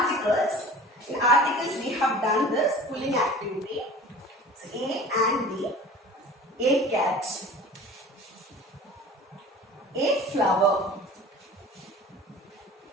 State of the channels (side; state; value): both; normal; correlation 0.41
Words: In articles we have done this pulling activity. So A and B. A cat. A flower.